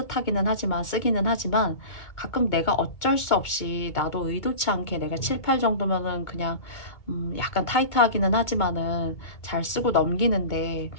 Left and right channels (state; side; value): late; right; 2.2 ms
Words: 하지만 쓰기는 하지만 가끔 내가 어쩔 수 없이 나도 의도치 않게 내가 7, 8 정도면은 그냥 약간 타이트하기는 하지만은 잘 쓰고 넘기는데